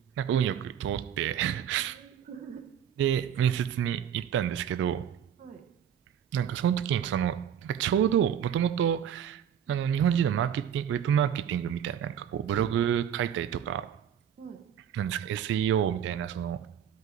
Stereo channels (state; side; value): quieter; left; 9.0 dB